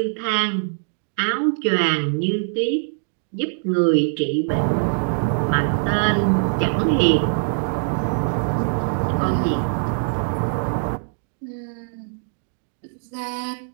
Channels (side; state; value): left; silent; digital silence